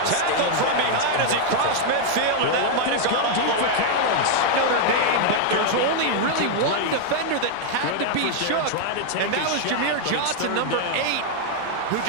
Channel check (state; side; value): different; both; correlation 0.00